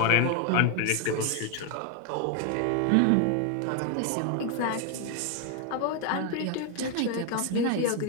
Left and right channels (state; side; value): different; both; correlation 0.01